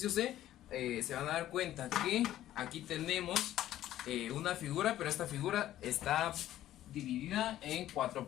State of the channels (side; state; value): right; quieter; 13.2 dB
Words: C se van a dar cuenta que aquí tenemos una figura, pero esta figura está dividida en 4